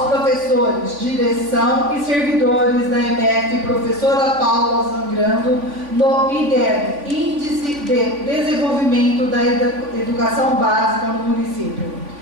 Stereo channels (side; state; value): left; late; 3.5 ms